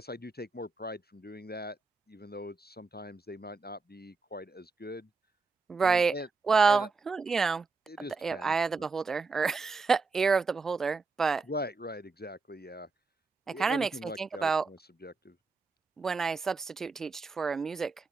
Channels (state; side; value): quieter; left; 4.3 dB